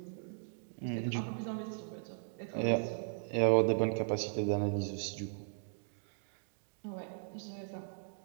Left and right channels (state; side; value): silent; left; digital silence